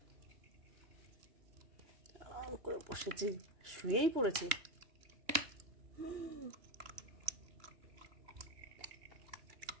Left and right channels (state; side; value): late; left; 3.1 ms